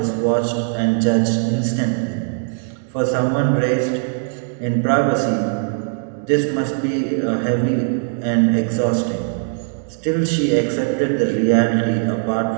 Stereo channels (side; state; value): left; silent; digital silence